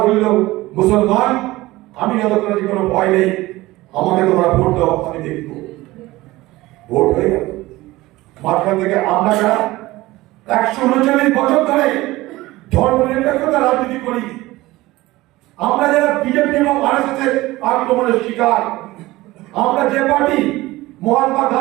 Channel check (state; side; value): quieter; left; 18.8 dB